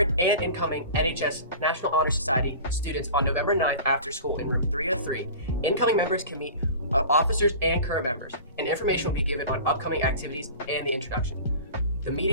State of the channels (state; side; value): inverted; both; correlation -0.38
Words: and incoming NHS National Honor Society students on November 9th after school in room 303. Incoming members can meet officers and current members, and information will be given on upcoming activities and the introduction. The